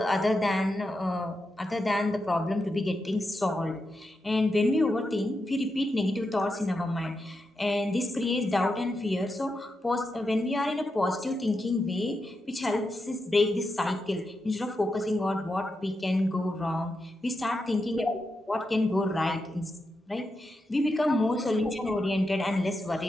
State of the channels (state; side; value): normal; both; correlation 0.87